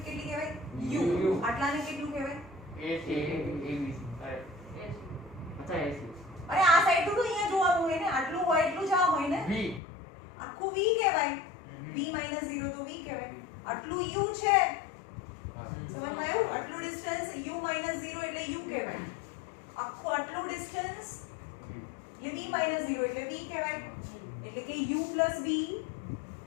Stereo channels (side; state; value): right; drops out; at 9.8 s